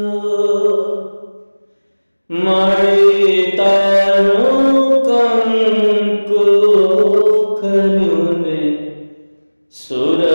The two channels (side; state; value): both; inverted; correlation -1.00